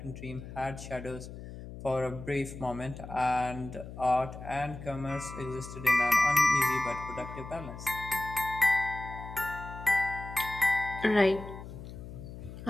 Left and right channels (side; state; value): left; noise; hum, 12 dB below the sound